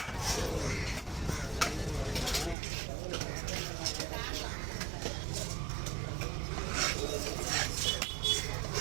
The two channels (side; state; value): left; drops out; at 2.6 s